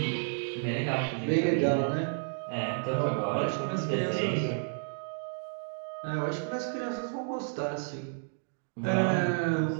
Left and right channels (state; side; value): silent; left; digital silence